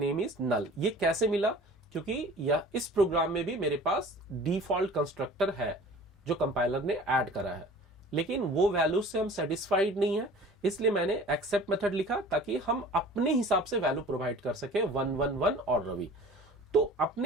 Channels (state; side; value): normal; both; correlation 0.44